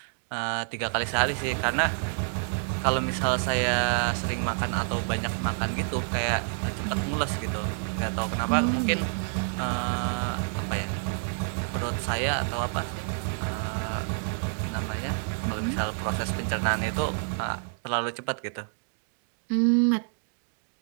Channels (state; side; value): silent; left; digital silence